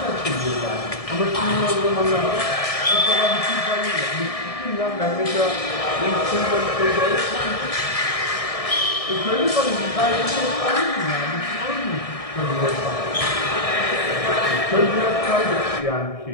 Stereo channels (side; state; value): right; late; 1.7 ms